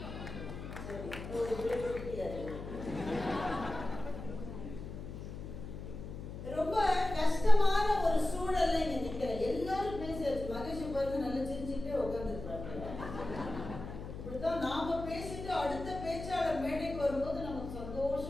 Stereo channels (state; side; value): noise; left; hum, 9 dB below the sound